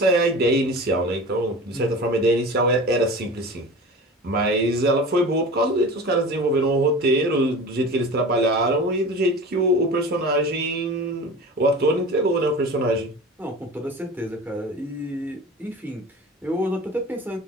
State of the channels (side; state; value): both; normal; correlation 0.35